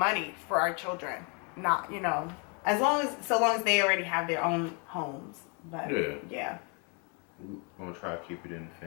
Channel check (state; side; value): quieter; right; 34.8 dB